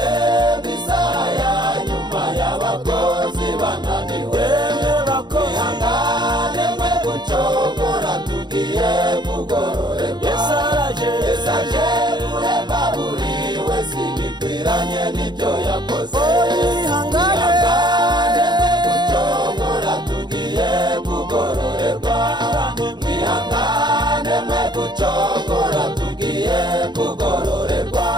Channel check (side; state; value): left; late; 0.21 ms